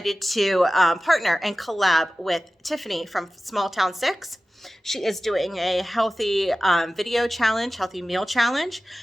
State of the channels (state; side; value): normal; both; correlation 0.96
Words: to partner and collab with Tiffany from Small Town 6. She is doing a healthy video challenge, healthy meal challenge.